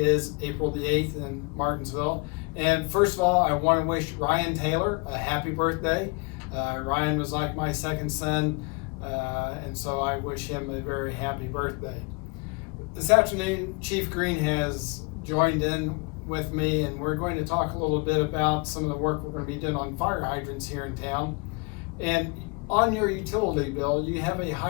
April the 8th in Martinsville. And first of all, I want to wish Ryan Taylor a happy birthday. Ryan was like my second son, and so I wish him a very happy birthday. This afternoon, Chief Green has joined in with me, and we're going to talk a little bit about some of the work we're going to be doing on fire hydrants here in town. And on your utility bill, you have a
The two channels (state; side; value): quieter; right; 30.5 dB